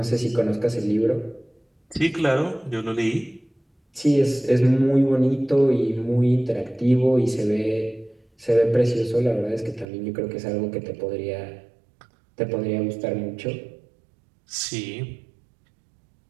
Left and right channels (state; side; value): drops out; left; at 9.9 s